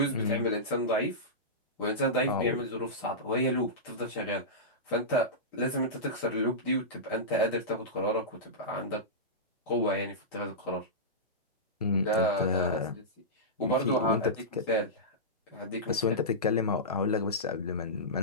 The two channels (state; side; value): normal; both; correlation -0.15